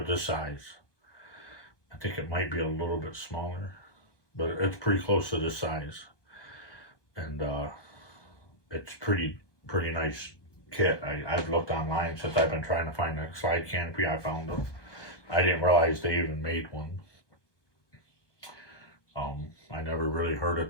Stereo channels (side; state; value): right; late; 1.2 ms